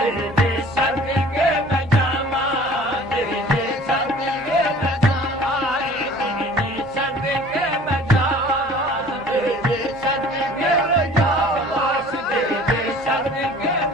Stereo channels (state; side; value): normal; both; correlation 0.48